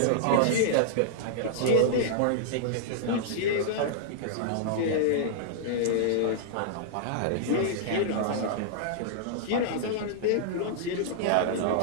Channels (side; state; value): both; different; correlation -0.01